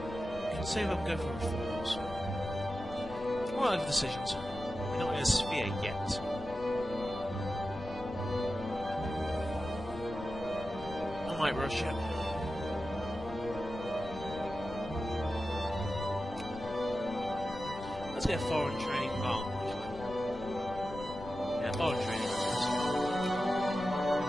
can see if I can go for reforms. What are the decisions? We're not in a sphere yet. I might rush it. Let's get foreign training. Oh, actually. Yeah, foreign training.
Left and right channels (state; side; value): noise; left; rumble, 14 dB below the sound